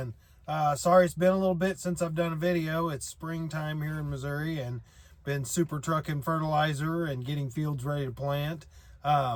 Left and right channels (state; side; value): identical; both; correlation 1.00